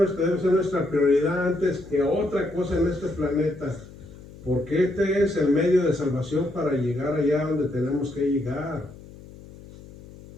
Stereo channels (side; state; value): left; noise; hum, 19 dB below the sound